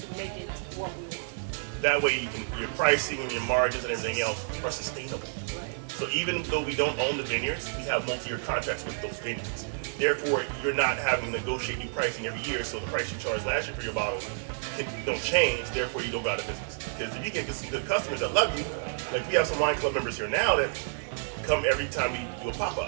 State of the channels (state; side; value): silent; left; digital silence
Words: make it what we want. That way your pricing and your margins and everything else are sustainable. Right. So even though we don't own the vineyards, we have multi-year contracts with those vineyards. Therefore, you're not having to negotiate new pricing every year, so the price you charged last year for your bottle don't change, therefore you don't go out of business. Because if you get some good customers that love you, like we have some wine club members here now that come every time we do a